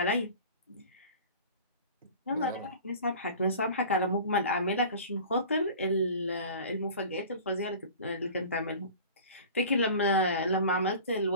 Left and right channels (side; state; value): both; inverted; correlation -0.41